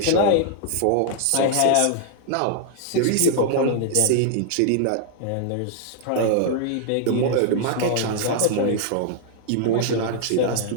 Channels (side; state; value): both; different; correlation -0.01